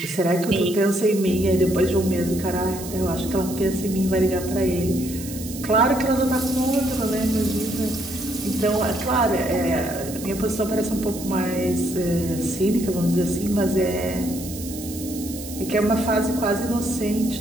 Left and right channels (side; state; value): right; noise; hiss, 12 dB below the sound